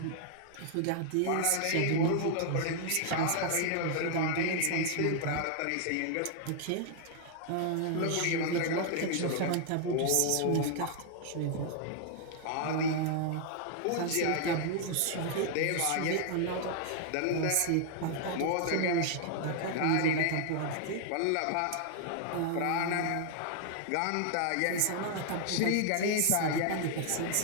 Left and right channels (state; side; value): different; both; correlation 0.00